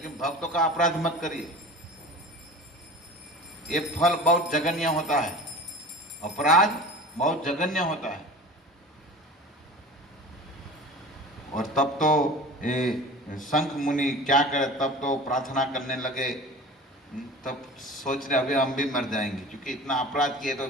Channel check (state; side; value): normal; both; correlation 0.38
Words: भक्तों का अपराध मत करिए, ये फल बहुत जघन्य होता है, अपराध बहुत जघन्य होता है। और तब तो ये शंख मुनि क्या करे, तब तो प्रार्थना करने लगे, तब सोच रहे अभी हम भी मर जाएंगे, क्योंकि इतना अपराध किए तो